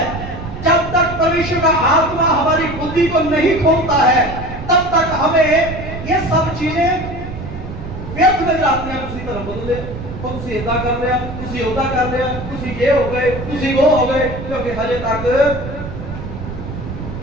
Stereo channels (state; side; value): noise; right; rumble, 9 dB below the sound